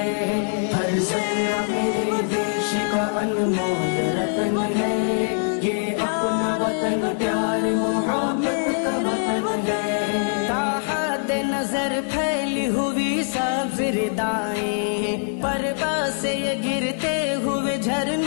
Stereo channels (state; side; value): silent; right; digital silence